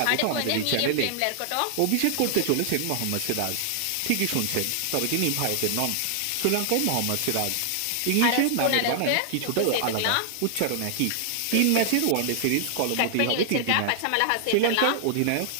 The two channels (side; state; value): both; different; correlation 0.00